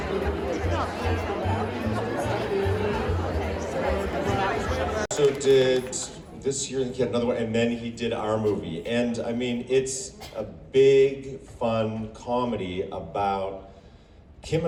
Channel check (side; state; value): both; identical; correlation 1.00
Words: So did this year, he had another one, and then he did our movie. And I mean, it's a big, fun comedy about Kim